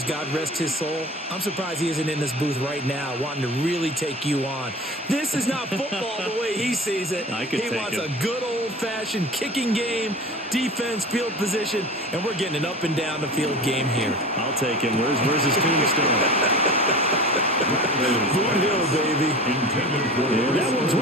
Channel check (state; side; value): normal; both; correlation 0.36